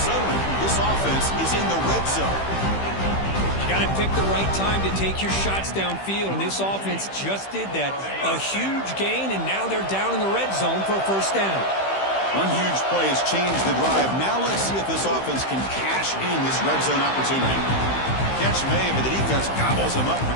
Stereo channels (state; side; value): late; right; 15 ms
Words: this offense is in the red zone. You got to pick the right time to take your shots downfield, and this offense just did that. A huge gain, and now they're down in the red zone for a first down. One huge play has changed the drive. Now let's see if this offense can cash in this red zone opportunity. Catch made, but the defense gobbles him up for